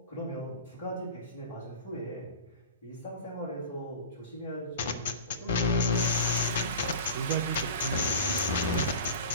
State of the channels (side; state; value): both; inverted; correlation -0.32